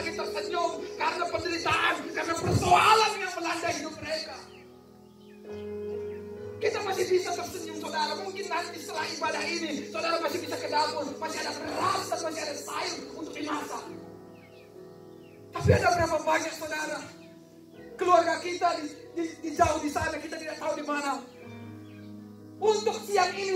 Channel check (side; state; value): both; identical; correlation 1.00